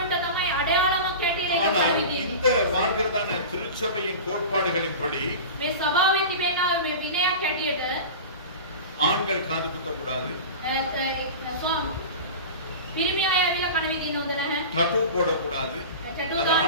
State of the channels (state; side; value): inverted; both; correlation -0.32